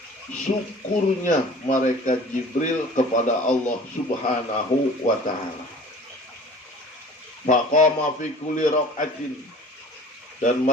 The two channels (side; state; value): both; normal; correlation 0.45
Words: syukurnya malaikat Jibril kepada Allah Subhanahu wa Ta'ala. Faqama fi kulli rak'atin, dan